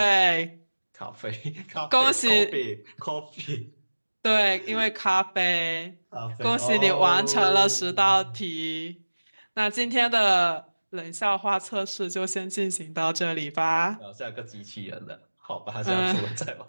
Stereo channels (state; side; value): inverted; both; correlation -1.00